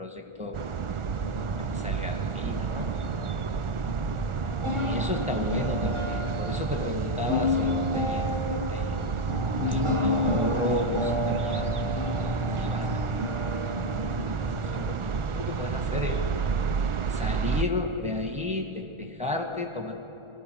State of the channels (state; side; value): late; left; 1.4 ms